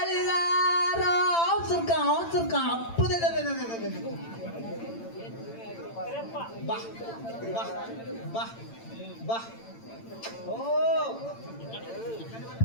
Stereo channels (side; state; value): right; late; 8.9 ms